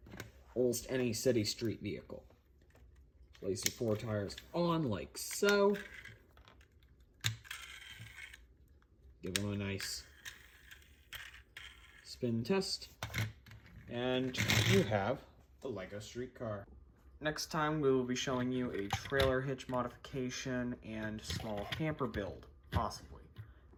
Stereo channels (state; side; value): identical; both; correlation 1.00